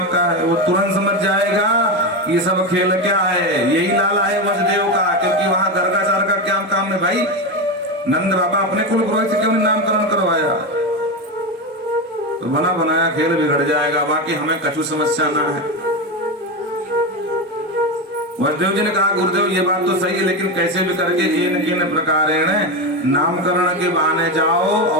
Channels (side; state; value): both; normal; correlation 0.15